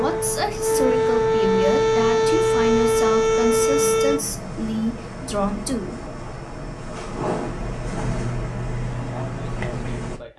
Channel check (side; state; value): both; identical; correlation 1.00